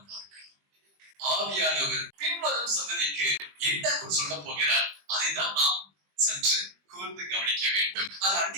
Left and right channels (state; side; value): late; left; 21 ms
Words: பார்க்கலாம். ஆவியானவர் பின்வரும் சந்ததிக்கு என்ன சொல்ல போகிறார், அதைதான் நாம் சற்று கூர்ந்து கவனிக்க வேண்டும். அது